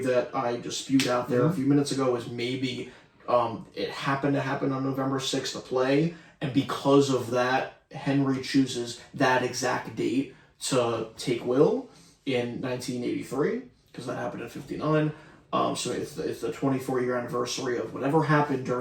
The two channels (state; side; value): identical; both; correlation 1.00